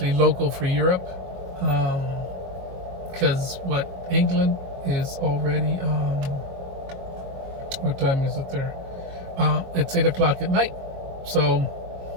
local for Europe, because England is already, what time is it there? It's 8 o'clock at night. So,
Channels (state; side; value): late; left; 22 ms